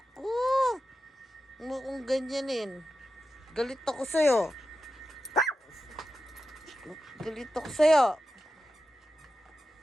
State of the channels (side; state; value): both; normal; correlation 0.91